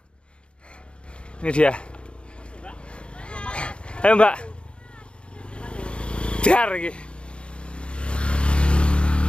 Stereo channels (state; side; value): late; right; 0.057 ms